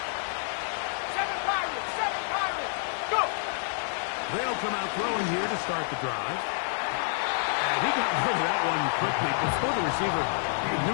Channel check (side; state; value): right; silent; digital silence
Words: 7 Pirates. Go. They'll come out throwing here to start the drive. And he got rid of that one quickly before the receiver even